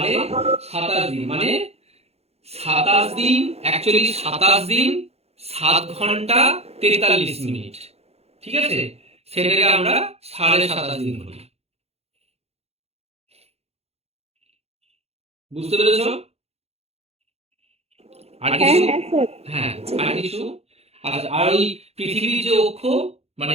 দিন মানে 27 দিন, অ্যাকচুয়ালি 27 দিন 7 ঘন্টা 43 মিনিট। ঠিক আছে, সেটাকে আমরা 27.5 দিন বলি। বুঝতে পেরেছো? আর হ্যাঁ কিছু? হ্যাঁ স্যার। হ্যাঁ, আর কিছু? আচ্ছা, আর ওই পৃথিবীর যে অক্ষ,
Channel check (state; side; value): late; left; 0.30 ms